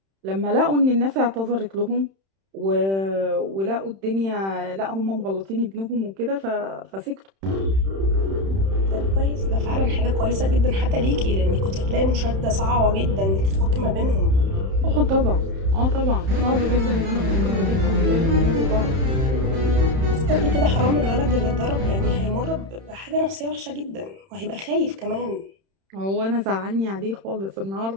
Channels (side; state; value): left; late; 31 ms